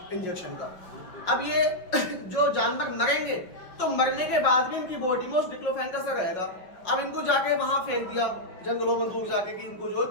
इंजेक्शन का। अब ये जो जानवर मरेंगे तो मरने के बाद भी इनकी बॉडी में उस डिक्लोफेन का असर रहेगा। अब इनको जाके वहां फेंक दिया जंगलों में दूर जाके कि इनको जो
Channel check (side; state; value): right; late; 5.5 ms